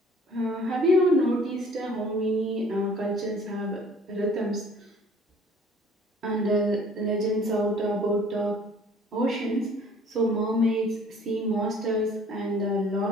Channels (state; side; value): normal; both; correlation 0.53